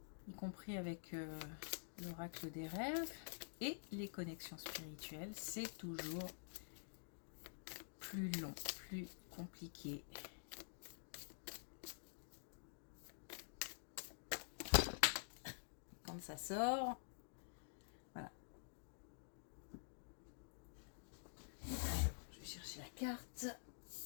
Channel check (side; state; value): right; silent; digital silence